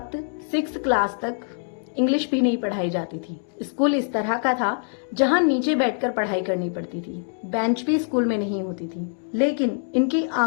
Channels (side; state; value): right; silent; 62 dB below the other